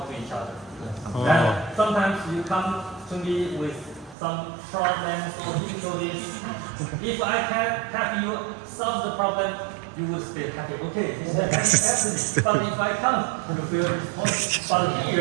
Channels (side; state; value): left; drops out; at 4.2 s